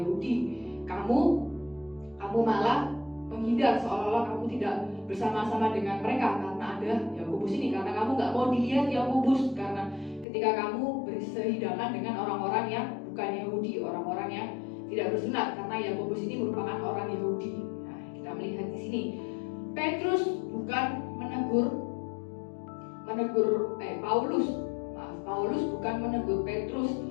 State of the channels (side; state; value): right; drops out; at 10.2 s